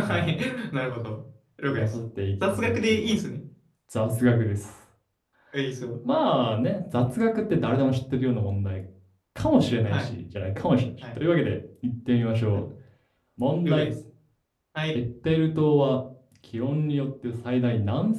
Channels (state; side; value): identical; both; correlation 1.00